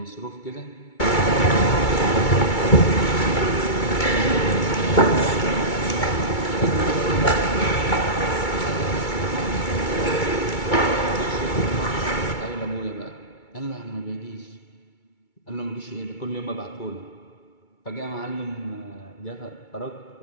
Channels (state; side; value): late; right; 2.3 ms